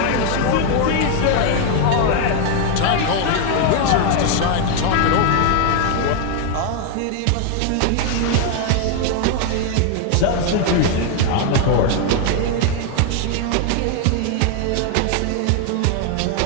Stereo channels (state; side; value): different; both; correlation 0.00